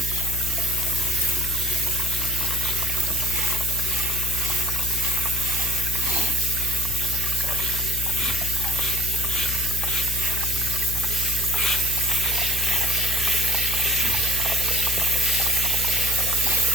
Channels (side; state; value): left; noise; hum, 6 dB below the sound